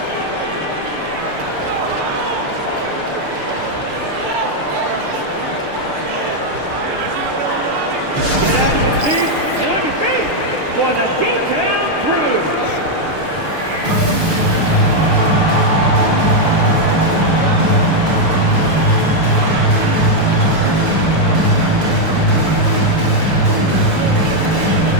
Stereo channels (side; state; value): left; late; 6.7 ms